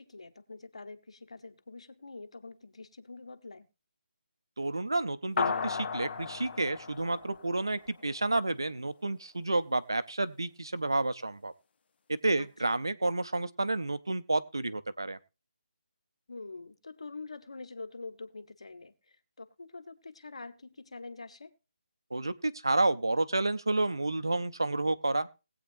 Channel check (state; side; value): inverted; both; correlation -0.91